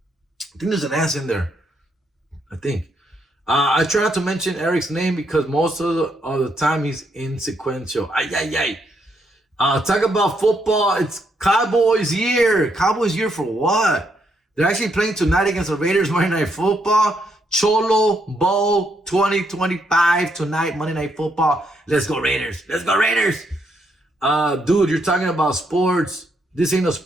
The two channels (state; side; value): normal; both; correlation 0.76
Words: I think there's an S in there. I think. I try not to mention Eric's name because most of the time he's insequential. Talk about football. It's Cowboys year. Cowboys year for what? They're actually playing tonight against the Raiders Monday Night Football. Cholo Bowl 2025 tonight, Monday Night Football. Let's go Raiders. Let's go Raiders. Dude, you're talking about sports. This ain't a